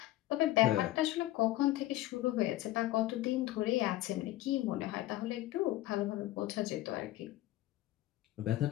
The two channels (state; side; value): quieter; right; 15.8 dB